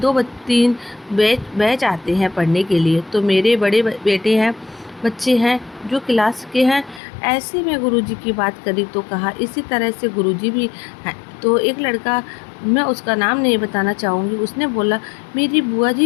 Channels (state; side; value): drops out; right; at 7.0 s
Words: 2-3 बैच आते हैं पढ़ने के लिए। तो मेरे बड़े बेटे हैं, बच्चे हैं जो क्लास के हैं। ऐसे में गुरुजी की बात करी तो कहा इसी तरह से गुरुजी भी हैं। तो एक लड़का, मैं उसका नाम नहीं बताना चाहूँगी, उसने बोला मेरी बुआ